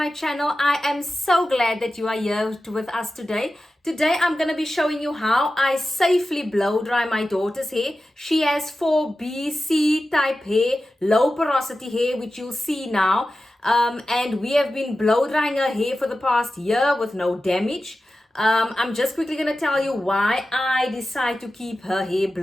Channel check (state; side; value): normal; both; correlation 0.93